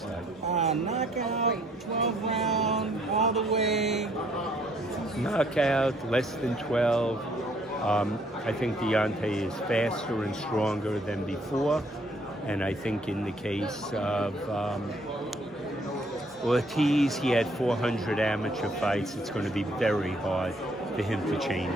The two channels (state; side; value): normal; both; correlation 0.64